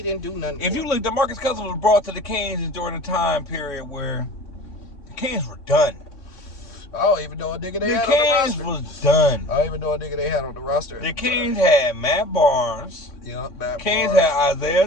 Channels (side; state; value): right; late; 3.6 ms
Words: didn't do nothing. If you look, DeMarcus Cousins was brought to the Kings during a time period where the Kings were done. I don't even know a nigga they had The on the Kings roster. was done. I don't even know a nigga they had on the roster. The Kings had Matt Barnes. Yep, Kings had Isaiah